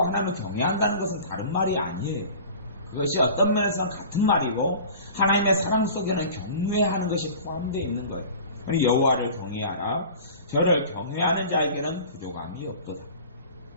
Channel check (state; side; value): inverted; both; correlation -0.41